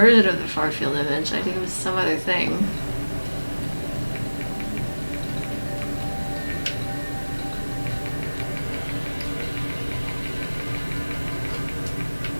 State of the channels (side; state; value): both; inverted; correlation -1.00